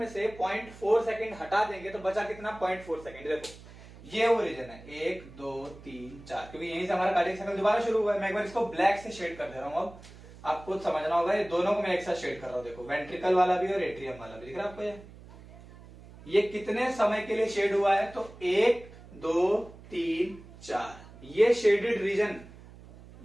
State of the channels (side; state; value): right; noise; hum, 19 dB below the sound